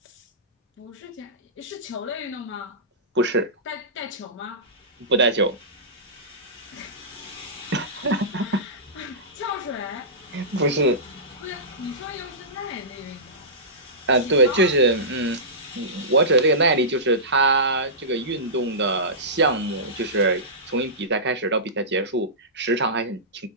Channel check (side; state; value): both; normal; correlation -0.19